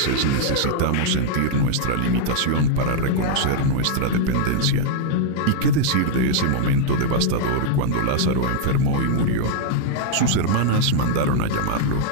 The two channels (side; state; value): both; different; correlation -0.01